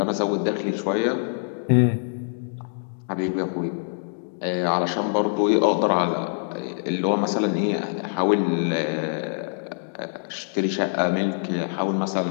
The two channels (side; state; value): right; silent; digital silence